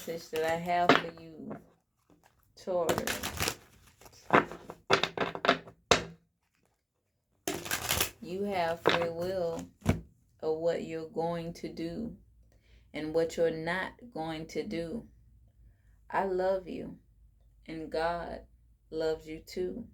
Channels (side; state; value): both; identical; correlation 1.00